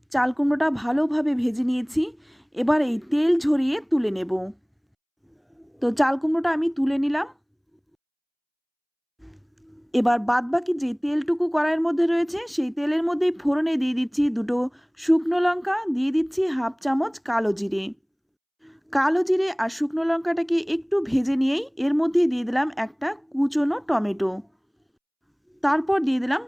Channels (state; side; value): identical; both; correlation 1.00